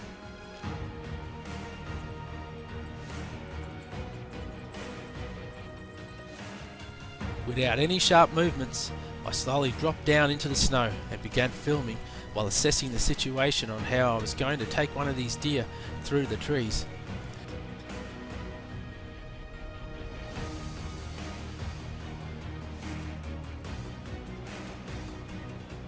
Without any sharp movements, I slowly dropped down into the snow and began filming while assessing the situation on how I was going to take one of these deer through the trees.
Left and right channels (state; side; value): identical; both; correlation 1.00